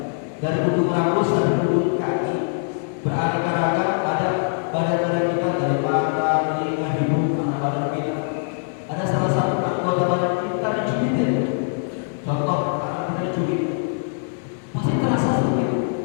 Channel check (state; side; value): silent; right; 64 dB below the other